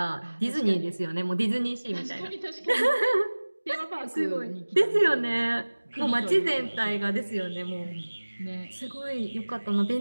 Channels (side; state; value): both; inverted; correlation -1.00